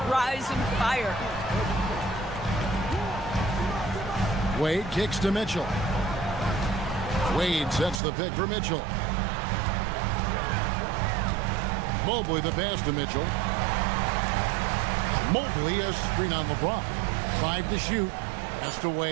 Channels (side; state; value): left; drops out; at 8.0 s